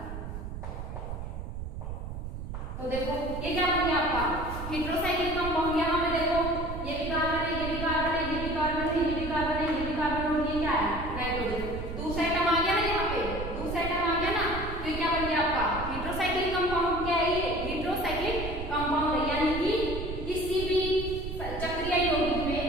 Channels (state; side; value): noise; right; rumble, 7 dB below the sound